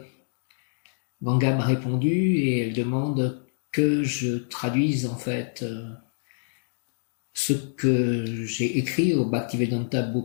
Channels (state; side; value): silent; right; digital silence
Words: Ganga m'a répondu et elle demande que je traduise en fait ce que j'ai écrit au Bhaktivedanta